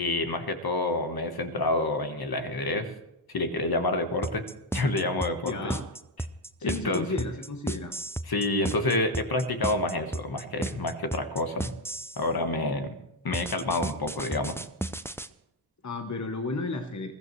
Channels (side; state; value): both; normal; correlation 0.05